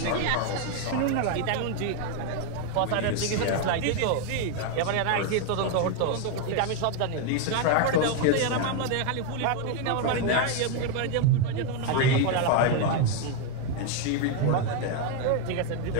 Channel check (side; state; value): both; different; correlation 0.01